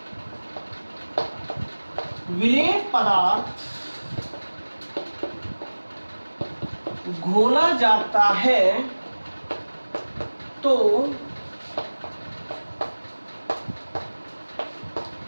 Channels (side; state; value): both; inverted; correlation -1.00